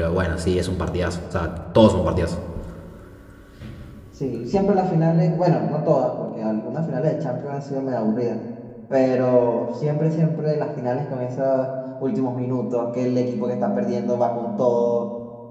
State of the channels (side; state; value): both; identical; correlation 1.00